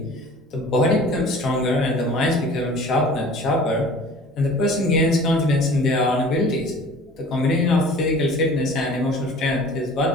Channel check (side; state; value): both; normal; correlation 0.45